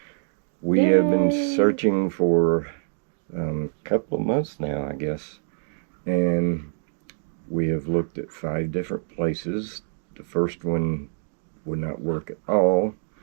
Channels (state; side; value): silent; left; digital silence